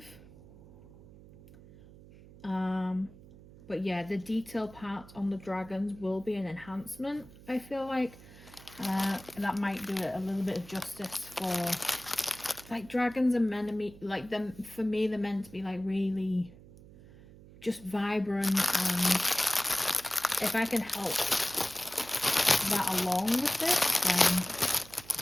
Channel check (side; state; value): right; noise; hum, 20 dB below the sound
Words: But yeah, the detail parts on the dragons will be an enhancement. I feel like that might do it a little bit of justice for, like, dragons are meant to be like them. For me, they're meant to be like really just vibrant, and if I can help that along with this, then